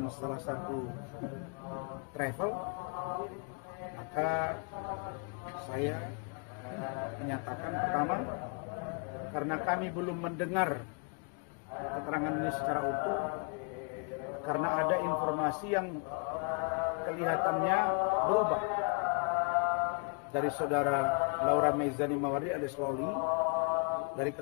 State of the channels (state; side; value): quieter; right; 37.2 dB